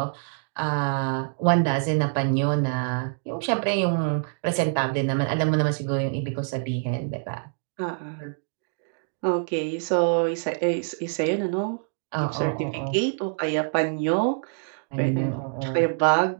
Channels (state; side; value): silent; left; digital silence